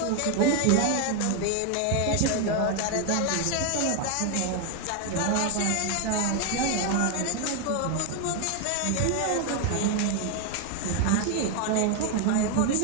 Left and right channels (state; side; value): different; both; correlation 0.01